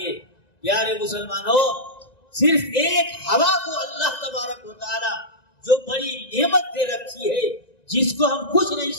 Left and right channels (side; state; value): right; late; 1.9 ms